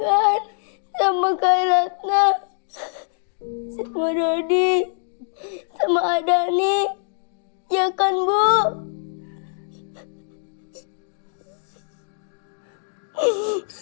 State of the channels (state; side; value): silent; right; digital silence